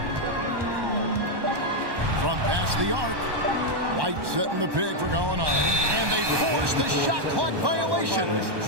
From past the arc. White setting the pick for Gallinari. And they force the shot clock violation.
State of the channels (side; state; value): left; late; 1.1 ms